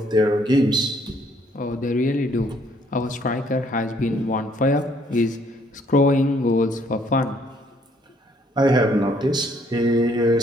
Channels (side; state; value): both; normal; correlation 0.65